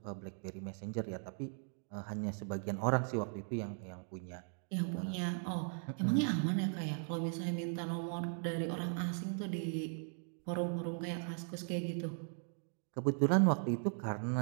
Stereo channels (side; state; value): left; silent; 52 dB below the other